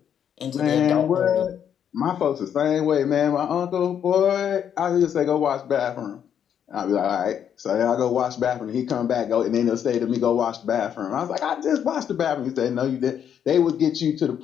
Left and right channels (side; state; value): right; quieter; 8.8 dB